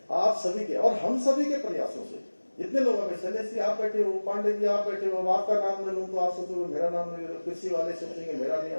आप सभी के और हम सभी के प्रयासों से जितने लोगों में, शैलेश जी आप बैठे हो, पांडे जी आप बैठे हो, अब आपका नाम ले लूं तो आप सोचोगे मेरा नाम नहीं ले, कृषि वाले सोचेंगे मेरा नहीं,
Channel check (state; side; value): inverted; both; correlation -1.00